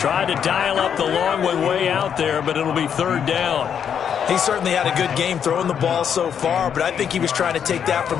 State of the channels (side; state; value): right; quieter; 8.1 dB